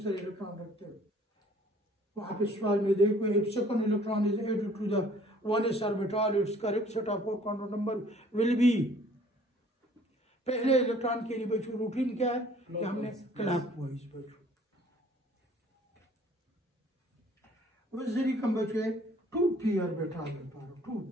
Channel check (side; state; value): both; normal; correlation 0.56